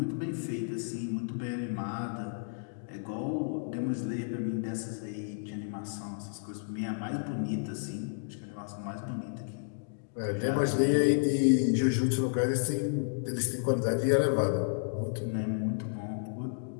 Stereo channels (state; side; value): silent; right; digital silence